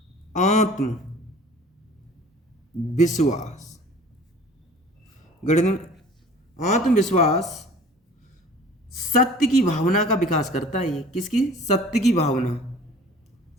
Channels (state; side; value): normal; both; correlation 0.46